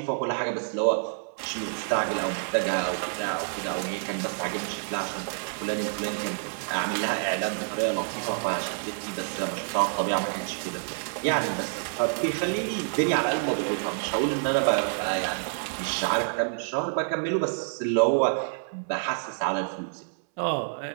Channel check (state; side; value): silent; left; 59 dB below the other